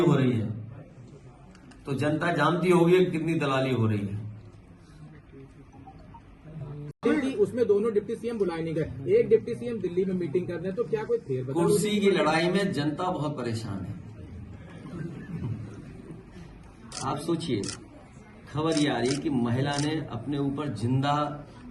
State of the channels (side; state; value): both; identical; correlation 1.00